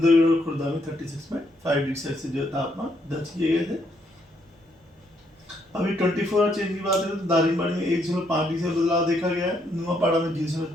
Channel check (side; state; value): both; normal; correlation 0.73